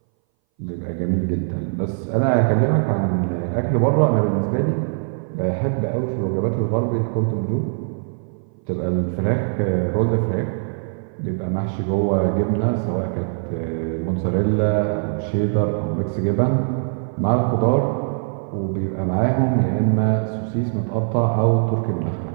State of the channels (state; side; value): silent; left; 61 dB below the other